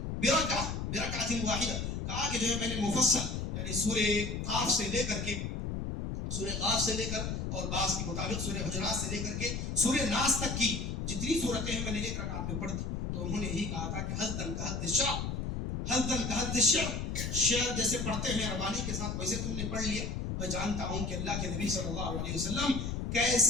برکعۃ واحدہ. کہا کہ جو ہے میں نے مفصل یعنی سورہ قاف سے لے کر اور بعض کے مطابق سورہ حجرات سے لے کر کے سورہ ناس تک کی جتنی صورتیں ہیں میں نے ایک رکعت میں پڑھ دی. تو انہوں نے یہی کہا تھا کہ حزدن کا حد الشعر، شعر جیسے پڑھتے ہیں روانی کے ساتھ ویسے تم نے پڑھ لیا. میں جانتا ہوں کہ اللہ کے نبی صلی اللہ علیہ وسلم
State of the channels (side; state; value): left; noise; rumble, 3 dB below the sound